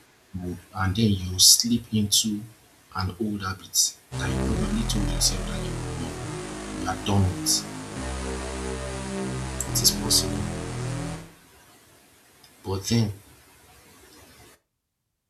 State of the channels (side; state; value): both; identical; correlation 1.00